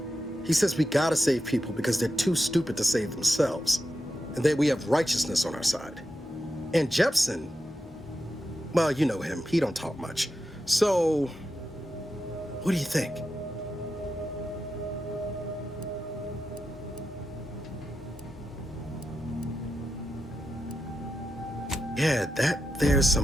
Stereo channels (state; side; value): normal; both; correlation 0.89